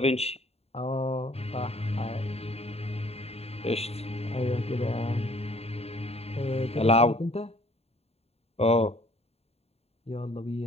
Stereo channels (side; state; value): right; late; 0.30 ms